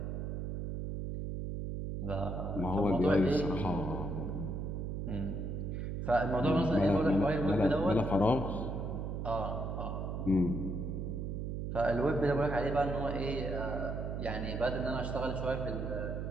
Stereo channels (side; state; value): right; noise; hum, 3 dB below the sound